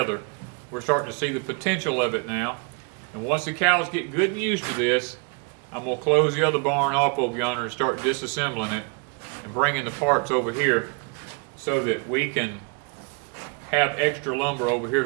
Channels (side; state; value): left; quieter; 35.9 dB